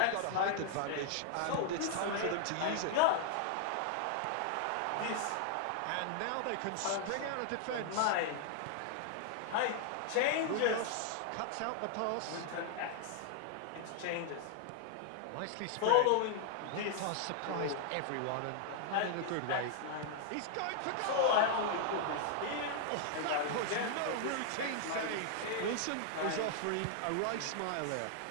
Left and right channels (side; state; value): both; different; correlation -0.01